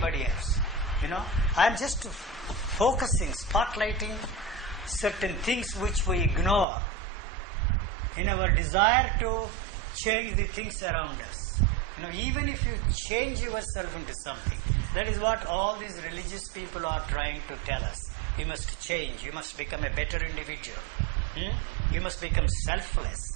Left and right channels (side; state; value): left; drops out; at 6.7 s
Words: else. I am just focusing, spotlighting certain things which we ignore in our desire to change the things around us. Even if you change yourself into something, that is what all these religious people are trying to tell us. You must change, you must become a better individual. You must become